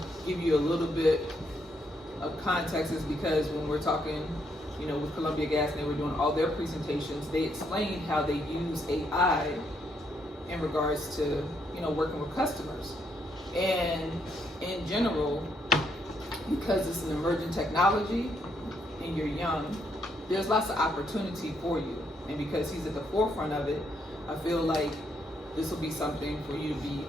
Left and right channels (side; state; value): both; normal; correlation 0.75